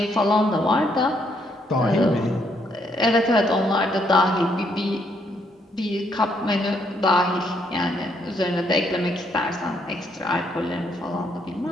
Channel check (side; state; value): both; normal; correlation 0.72